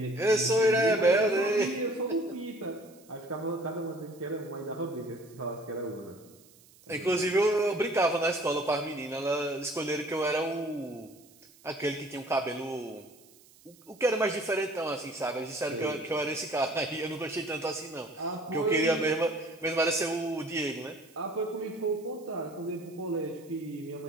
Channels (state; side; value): noise; right; hiss, 26 dB below the sound